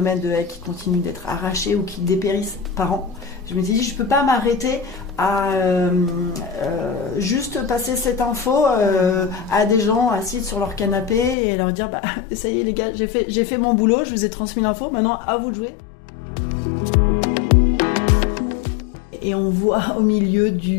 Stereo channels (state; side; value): drops out; right; at 11.4 s